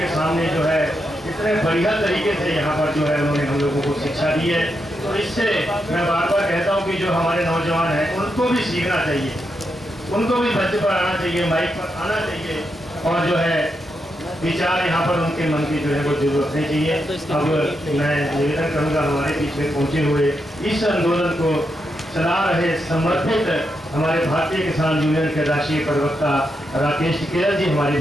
सामने जो है इतने बढ़िया तरीके से यहाँ पर जो है उन्होंने हम लोगों को शिक्षा दी है। तो इससे मैं बार बार कहता हूँ कि जो हमारे नौजवान हैं उनको भी सीखना चाहिए, उनको भी मंच पर आना चाहिए, माइक पर आना चाहिए और जो है विचार यहाँ पर उनके मन की जो है वो जरूर रखनी चाहिए। अब मैं निवेदन करूँगा हमारे बीच में पहुँचे हुए इस आंदोलन को चला रहे समर्पित हमारे भारतीय किसान यूनियन के राष्ट्रीय प्रवक्ता राकेश टिकैत जी हमारे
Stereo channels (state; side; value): normal; both; correlation 0.84